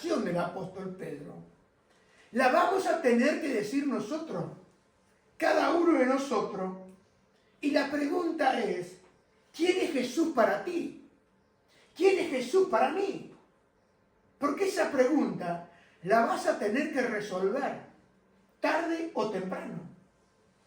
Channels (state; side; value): identical; both; correlation 1.00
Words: del apóstol Pedro la vamos a tener que decir nosotros, cada uno de nosotros. Y la pregunta es, ¿quién es Jesús para ti? ¿Quién es Jesús para mí? Porque esa pregunta la vas a tener que resolver tarde o temprano.